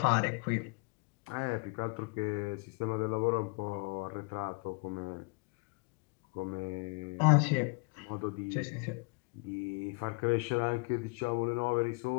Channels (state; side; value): quieter; right; 30.5 dB